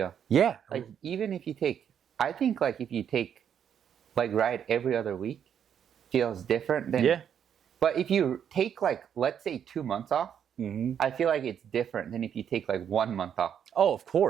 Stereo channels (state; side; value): quieter; left; 8.6 dB